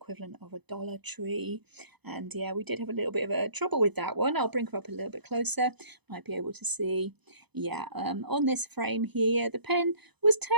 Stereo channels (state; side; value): late; left; 0.99 ms